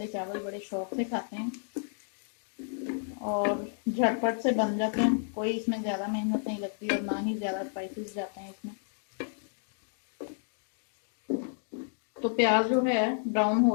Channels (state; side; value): silent; right; digital silence